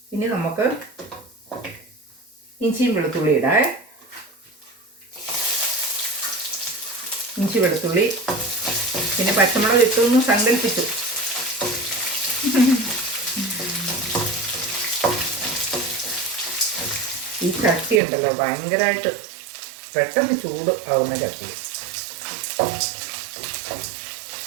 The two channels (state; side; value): drops out; left; at 18.0 s